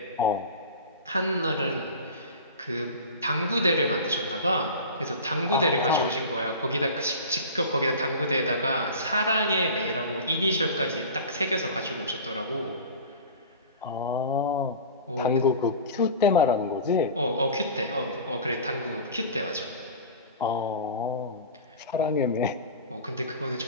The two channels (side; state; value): both; inverted; correlation -0.34